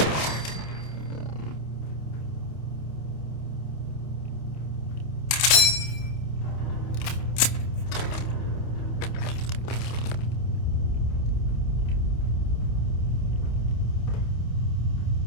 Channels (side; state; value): right; late; 28 ms